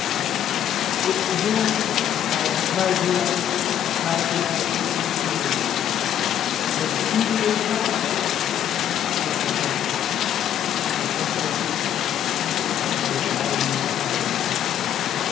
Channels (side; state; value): right; quieter; 10.3 dB